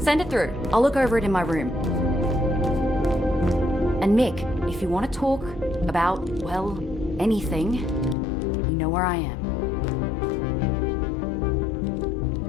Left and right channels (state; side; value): drops out; right; at 8.2 s